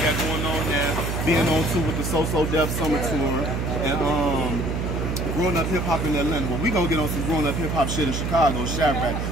going on now, being on tour with the So Def Summer Tour, and Growing Up Hip Hop in Atlanta. Well, we gonna get on some Growing Up Hip Hop shit in Chicago, Shadrach.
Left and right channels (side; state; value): right; noise; hum, 1 dB below the sound